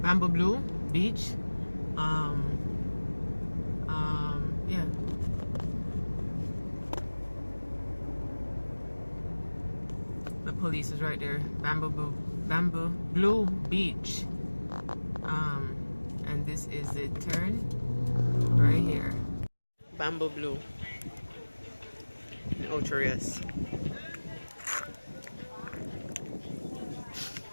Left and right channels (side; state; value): both; inverted; correlation -1.00